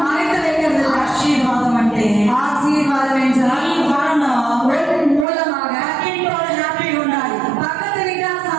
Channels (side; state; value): left; drops out; at 5.2 s